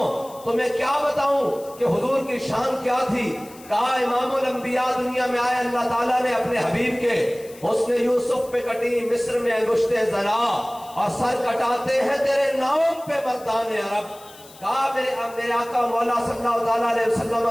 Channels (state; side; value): noise; left; hiss, 22 dB below the sound